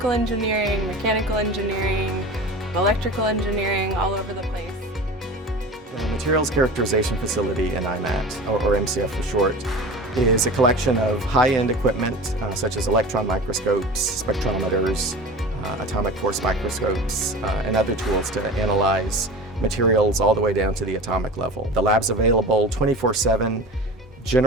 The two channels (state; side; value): normal; both; correlation 0.34